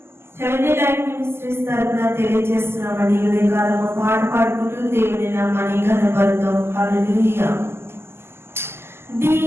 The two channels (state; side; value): late; left; 0.12 ms